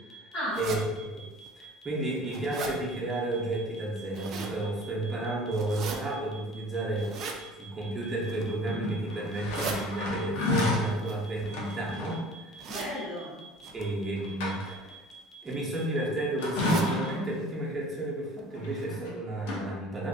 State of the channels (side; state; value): both; normal; correlation 0.46